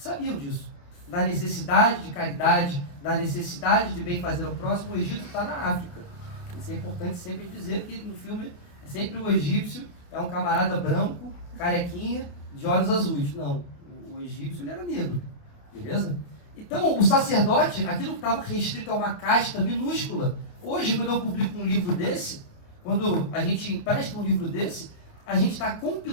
disso. Da necessidade de caridade, da necessidade de bem fazer ao próximo. O Egito está na África. Isso é importante sempre dizer que no filme é sempre o egípcio, é um camarada branco, carequinha, de olhos azuis. Não, o egípcio ele era negro, beleza? Então, o sacerdote, aquilo que estava restrito a uma casta minúscula, hoje, quando eu publico um livro desse, quando a gente empresta um livro desse, a gente está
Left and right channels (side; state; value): right; late; 28 ms